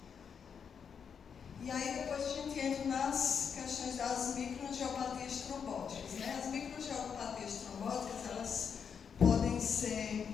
E aí depois a gente entra nas questões das microangiopatias trombóticas, né? As microangiopatias trombóticas, elas podem ser,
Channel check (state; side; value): quieter; right; 6.9 dB